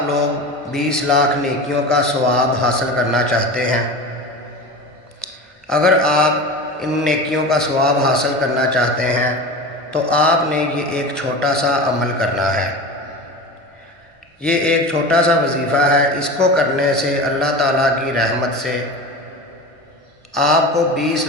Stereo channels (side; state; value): both; normal; correlation 0.29